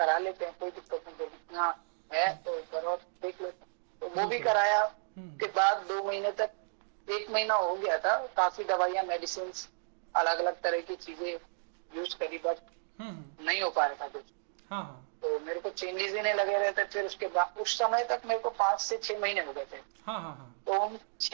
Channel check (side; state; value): left; silent; digital silence